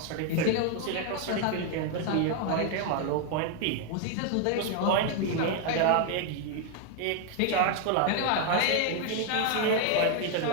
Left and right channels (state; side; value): different; both; correlation 0.01